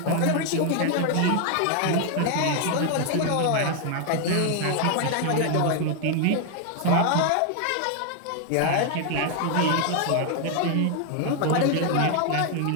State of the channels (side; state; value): both; different; correlation 0.01